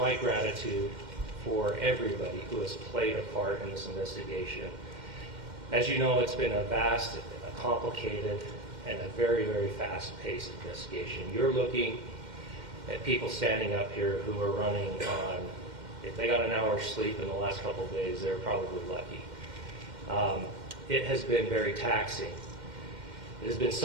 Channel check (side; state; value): left; late; 2.1 ms